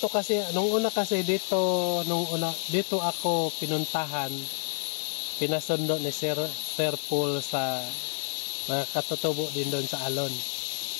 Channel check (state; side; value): silent; right; 59 dB below the other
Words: kasi, nung una dito ako pinuntahan, pinasundo ni Sir Paul sa mga katutubo din doon sa Alon.